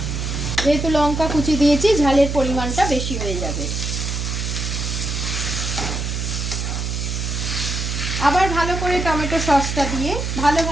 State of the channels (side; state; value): right; noise; hum, 3 dB below the sound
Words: যেহেতু লঙ্কা কুচি দিয়েছি ঝালের পরিমাণটা বেশি হয়ে যাবে। আবার ভালো করে টমেটো সসটা দিয়ে